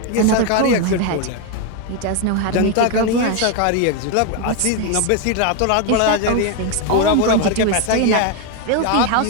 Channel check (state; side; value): different; both; correlation 0.01